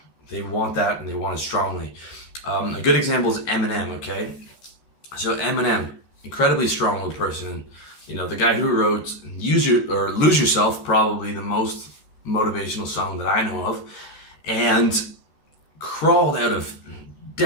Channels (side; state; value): right; late; 14 ms